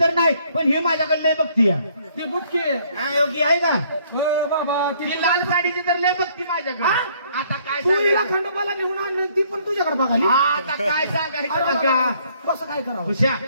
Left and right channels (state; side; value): inverted; both; correlation -0.64